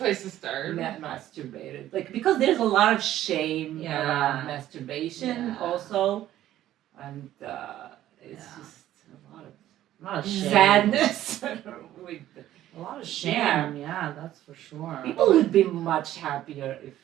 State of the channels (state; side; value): quieter; left; 13.1 dB